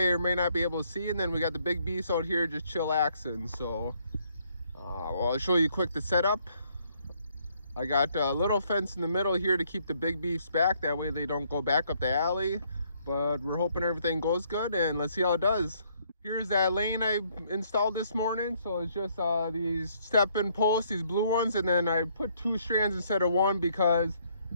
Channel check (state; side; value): inverted; both; correlation -0.68